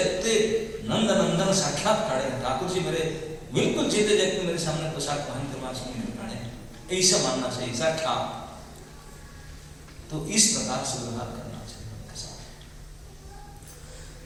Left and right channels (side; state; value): both; identical; correlation 1.00